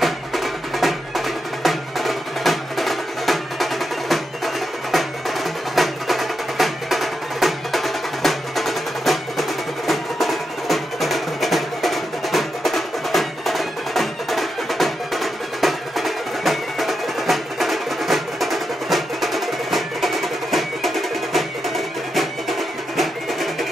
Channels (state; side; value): normal; both; correlation 0.86